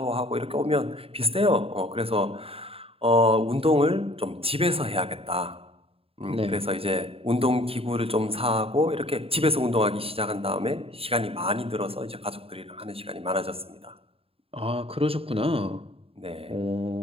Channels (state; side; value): late; left; 0.27 ms